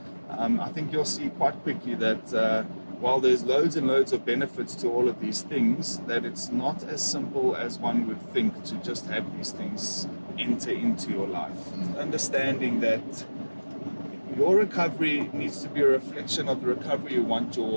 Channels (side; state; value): both; inverted; correlation -1.00